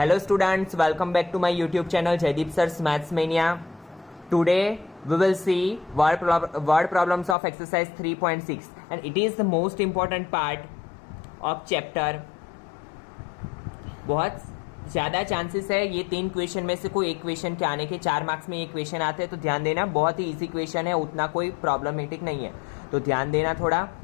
students, welcome back to my YouTube channel Jaideep Sir's Maths Mania. Today we will see word problems of exercise 3.6 and it is the most important part of chapter. बहुत ज़्यादा chances है ये 3 question में से कोई एक question के आने के। 4 मार्क्स में ये क्वेश्चन आते हैं तो ध्यान देना, बहुत ही इजी क्वेश्चन है, उतना कोई प्रॉब्लमेटिक नहीं है, तो ध्यान देना थोड़ा।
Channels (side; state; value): right; drops out; at 7.4 s